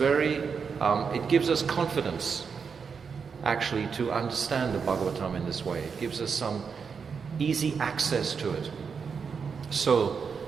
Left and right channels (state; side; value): quieter; left; 5.9 dB